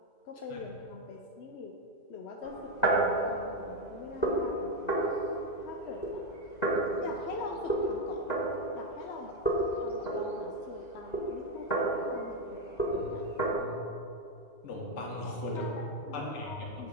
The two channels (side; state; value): right; late; 2.0 ms